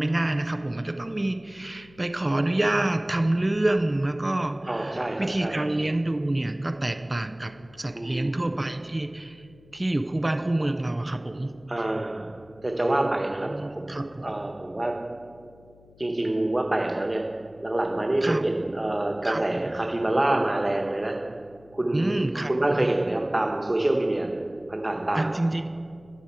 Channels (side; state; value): left; noise; hum, 26 dB below the sound